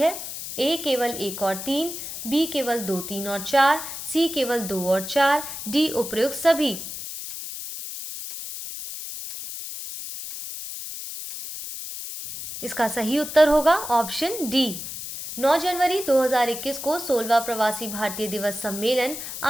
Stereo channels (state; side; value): noise; left; hiss, 8 dB below the sound